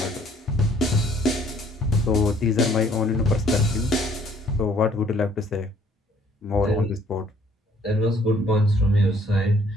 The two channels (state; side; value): normal; both; correlation 0.61